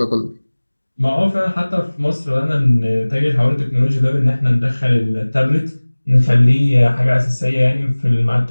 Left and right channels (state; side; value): inverted; both; correlation -1.00